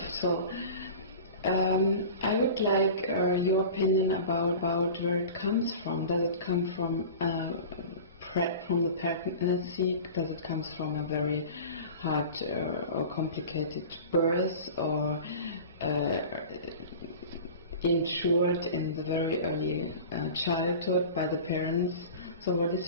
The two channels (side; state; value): both; inverted; correlation -0.37